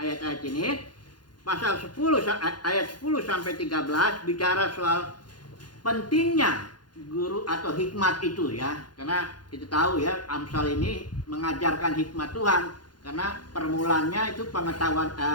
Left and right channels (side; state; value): right; late; 0.71 ms